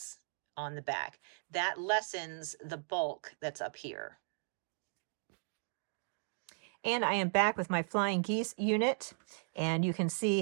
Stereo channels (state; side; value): silent; left; digital silence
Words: on the back. That lessens the bulk that's up here. And I am back with my Flying Geese unit, and you can